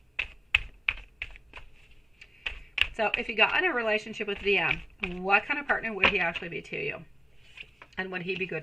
So if you got in a relationship with DM, what kind of partner would he actually be to you? And would he be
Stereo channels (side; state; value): both; normal; correlation 0.97